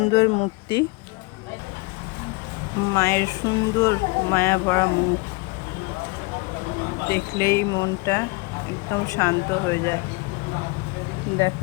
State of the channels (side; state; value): right; quieter; 25.7 dB